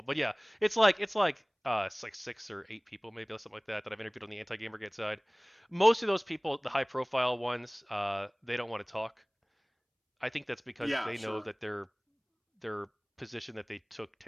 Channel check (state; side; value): identical; both; correlation 1.00